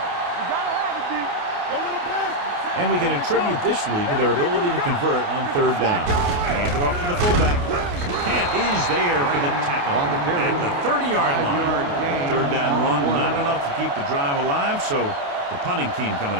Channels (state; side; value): late; left; 28 ms